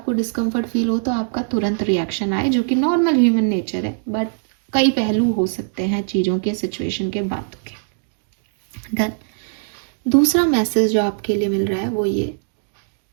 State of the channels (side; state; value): left; silent; digital silence